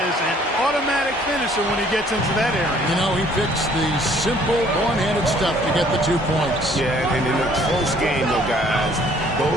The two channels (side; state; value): both; normal; correlation 0.59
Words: an automatic finisher when he gets into that area. You know, he picks the simple one-handed stuff to get the 2 points. Yeah, and in a close game, though, guys,